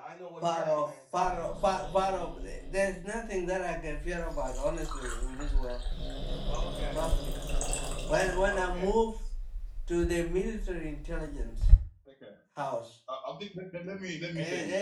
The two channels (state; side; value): identical; both; correlation 1.00